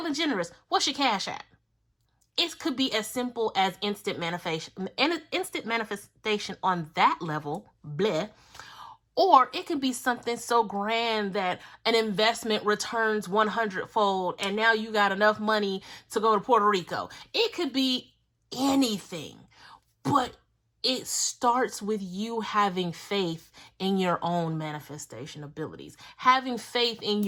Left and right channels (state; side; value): identical; both; correlation 1.00